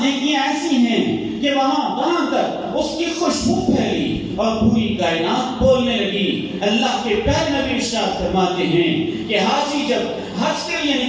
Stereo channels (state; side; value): identical; both; correlation 1.00